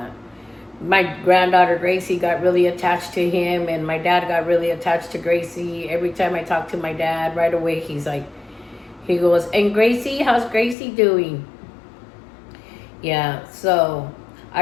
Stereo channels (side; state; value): right; drops out; at 10.8 s